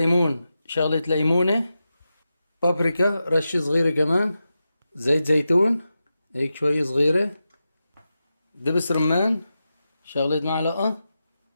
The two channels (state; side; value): inverted; both; correlation -0.91